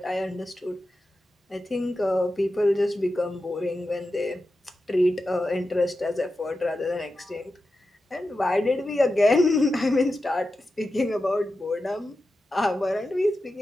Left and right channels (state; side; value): normal; both; correlation 0.91